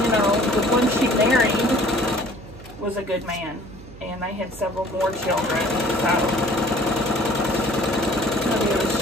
know, the one she married was a good man, and they had several more children, so maybe it was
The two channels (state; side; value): noise; right; hum, 17 dB below the sound